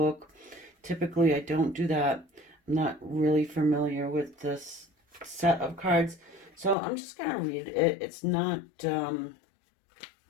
Typically, I don't do that. I'm not really familiar with this set of cards. So I'm just going to read it. It's not, they're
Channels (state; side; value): drops out; right; at 6.8 s